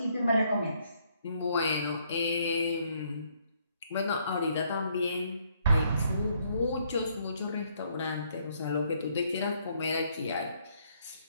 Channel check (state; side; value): inverted; both; correlation -0.70